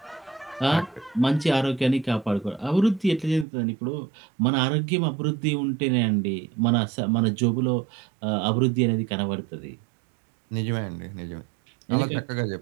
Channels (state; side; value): drops out; left; at 3.5 s